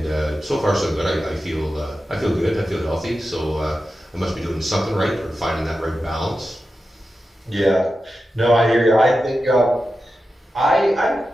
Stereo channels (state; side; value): normal; both; correlation 0.91